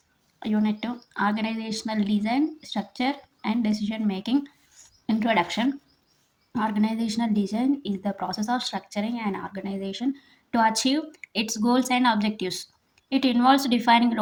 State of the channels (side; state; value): both; identical; correlation 1.00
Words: Unit 2 Organizational Design, Structure and Decision Making. Introduction. Organizational design is the process of structuring an organization to achieve its goals and objectives. It involves defining